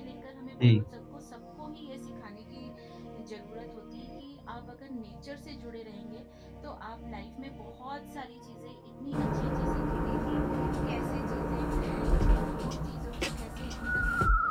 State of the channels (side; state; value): both; identical; correlation 1.00